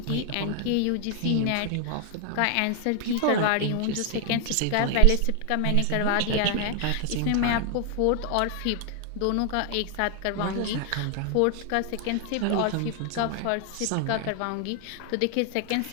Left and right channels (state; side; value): different; both; correlation 0.00